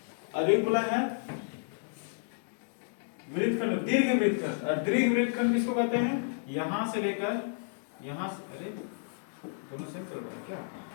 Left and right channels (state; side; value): silent; right; digital silence